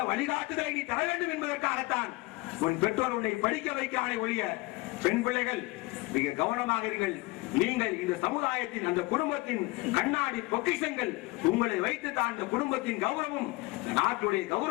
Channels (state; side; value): quieter; right; 23.2 dB